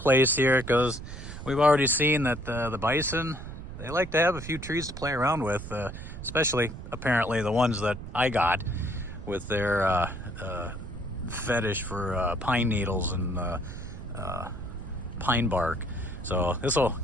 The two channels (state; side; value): noise; right; rumble, 10 dB below the sound